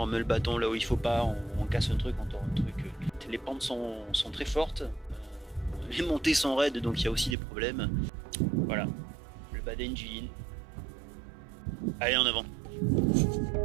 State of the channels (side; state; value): left; drops out; at 7.4 s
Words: on met le bâton là où il faut pas, on casse un truc, on tord un truc. Les pentes sont très fortes, les montées sont raides, donc il y a aussi des problèmes. Voilà, le Baden Jilin. Allez, en avant.